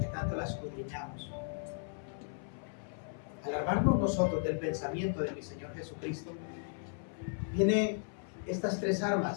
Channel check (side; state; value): right; silent; 54 dB below the other